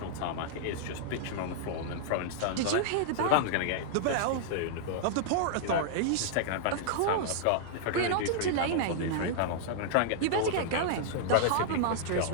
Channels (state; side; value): different; both; correlation -0.01